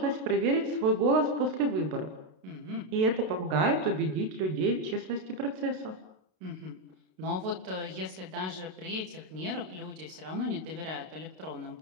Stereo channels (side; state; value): left; late; 32 ms